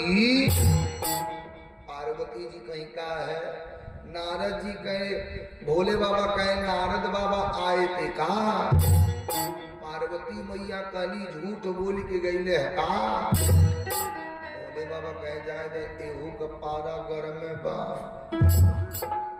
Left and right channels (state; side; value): identical; both; correlation 1.00